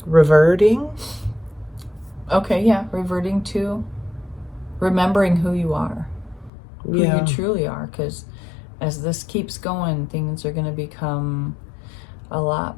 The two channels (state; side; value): drops out; right; at 6.5 s